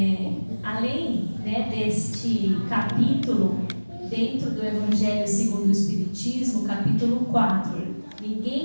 além, né, deste capítulo, dentro do Evangelho segundo o Espiritismo, capítulo 4,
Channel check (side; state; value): both; inverted; correlation -1.00